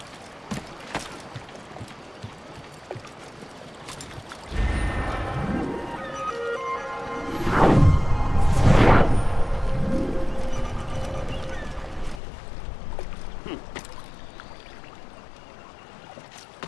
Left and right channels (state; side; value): drops out; right; at 12.2 s